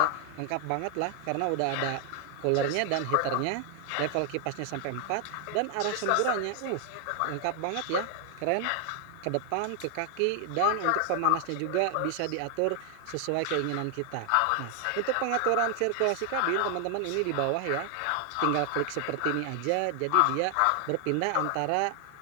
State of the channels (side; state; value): both; different; correlation 0.00